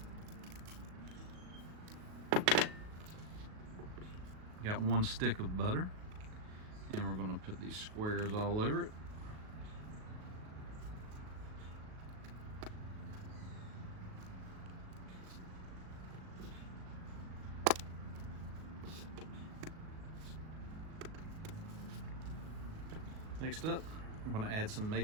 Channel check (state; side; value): late; left; 38 ms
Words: Got 1 stick of butter, and we're going to put these squares all over it. Next up, I'm going to add some